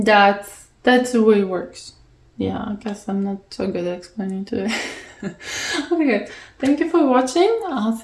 the way it works. Yeah, I guess I'm not so good at explaining to it. Okay, thank you for watching. I'll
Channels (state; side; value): identical; both; correlation 1.00